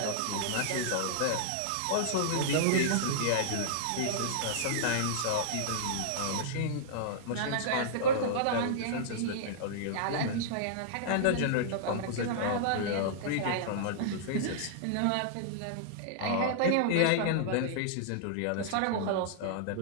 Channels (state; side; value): different; both; correlation -0.02